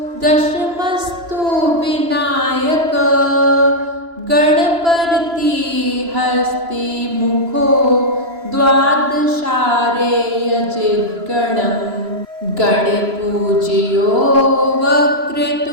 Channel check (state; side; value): late; left; 3.0 ms